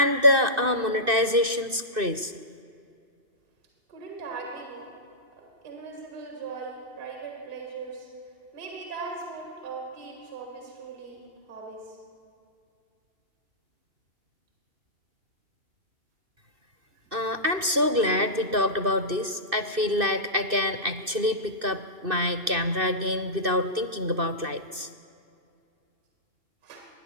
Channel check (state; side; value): late; left; 2.6 ms